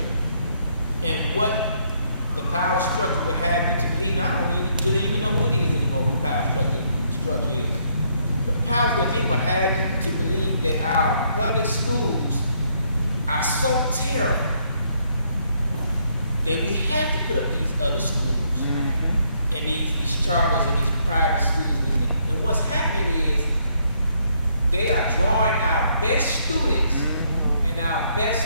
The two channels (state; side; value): inverted; both; correlation -0.71